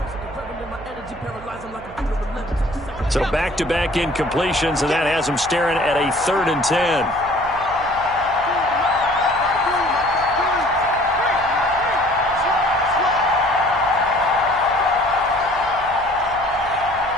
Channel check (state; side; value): noise; right; hum, 18 dB below the sound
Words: So back-to-back incompletions, and that has them staring at a 3rd and 10.